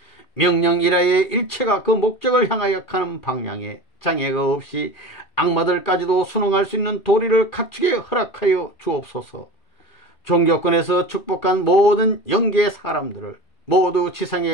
명령이라의 일체가 그 목적을 향하여 가는 방향에 장애가 없이 악마들까지도 순응할 수 있는 도리를 갖추게 허락하여 주옵소서. 종교권에서 축복한 모든 영계의 사람들을 모두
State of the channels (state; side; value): late; right; 2.4 ms